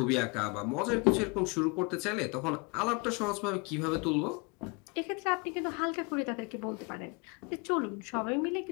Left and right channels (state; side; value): quieter; right; 30.2 dB